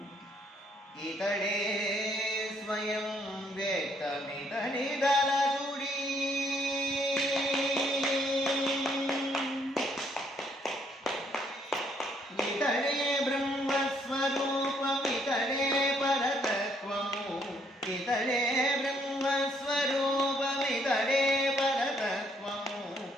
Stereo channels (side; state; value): both; normal; correlation 0.69